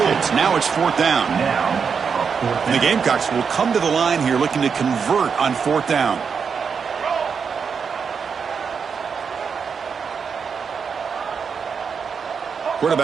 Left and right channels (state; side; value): quieter; left; 6.1 dB